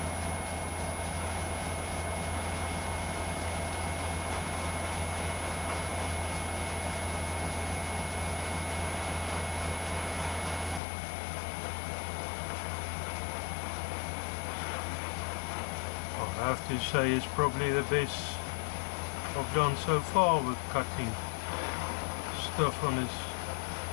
I have to say it's probably the best I've done so far with cutting stuff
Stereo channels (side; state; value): right; drops out; at 10.8 s